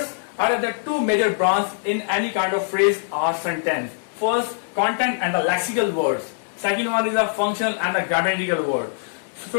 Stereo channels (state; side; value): silent; right; digital silence